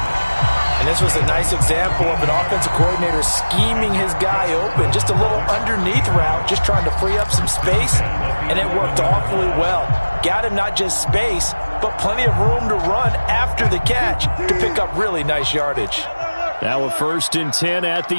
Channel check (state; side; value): inverted; both; correlation -1.00